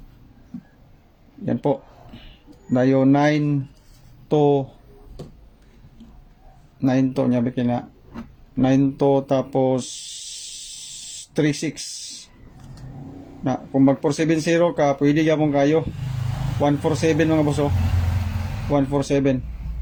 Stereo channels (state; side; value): identical; both; correlation 1.00